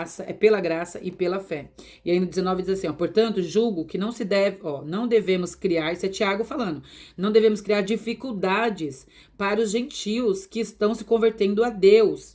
pela graça e pela fé. E aí no 19 diz assim, portanto, julgo que não devemos criar, isso é Tiago falando, não devemos criar dificuldades para os gentios que estão se convertendo a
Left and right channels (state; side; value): identical; both; correlation 1.00